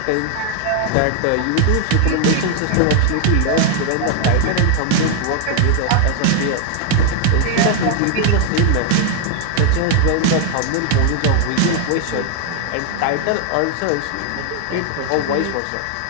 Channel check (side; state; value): both; different; correlation 0.00